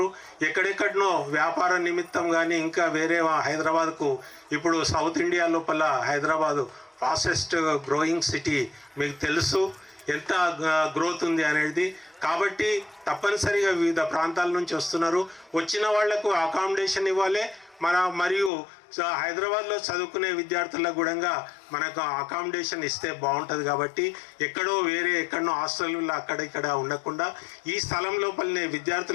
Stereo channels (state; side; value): drops out; right; at 18.5 s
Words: ఎక్కడెక్కడనో వ్యాపార నిమిత్తం కానీ ఇంకా వేరే హైదరాబాద్కు ఇప్పుడు సౌత్ ఇండియా లోపల హైదరాబాదు ఫాస్టెస్ట్ గ్రోయింగ్ సిటీ, మీకు తెలుసు ఎంత గ్రోత్ ఉంది అనేది. కాబట్టి తప్పనిసరిగా వివిధ ప్రాంతాల నుంచి వస్తున్నారు. వచ్చిన వాళ్లకు అకామిడేషన్ ఇవ్వాలి. మరియు హైదరాబాద్లో చదువుకునే విద్యార్థులకు కూడా మనకు అకామిడేషన్ ఇస్తే బాగుంటుంది. కాబట్టి ఎక్కడో హాస్టల్లో అక్కడ ఇక్కడ ఉండకుండా ఈ స్థలం లోపలనే